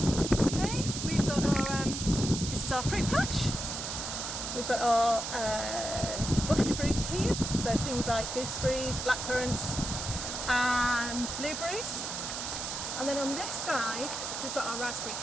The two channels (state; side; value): noise; right; hiss, 5 dB below the sound